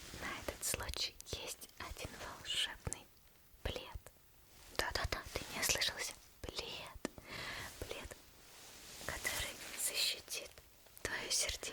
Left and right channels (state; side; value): identical; both; correlation 1.00